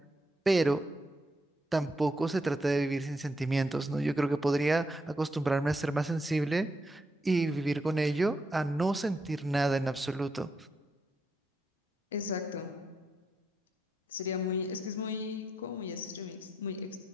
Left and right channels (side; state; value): both; normal; correlation 0.81